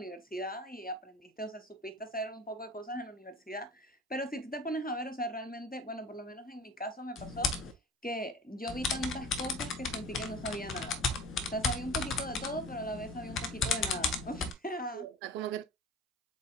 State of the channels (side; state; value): both; normal; correlation 0.39